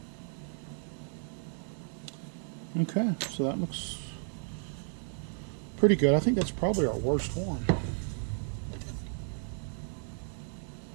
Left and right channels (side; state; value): left; silent; 56 dB below the other